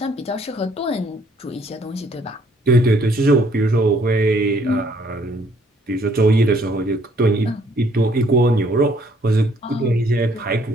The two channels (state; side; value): normal; both; correlation 0.63